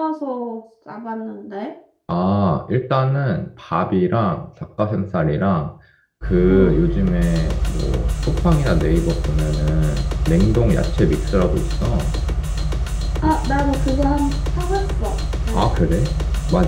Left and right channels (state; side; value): identical; both; correlation 1.00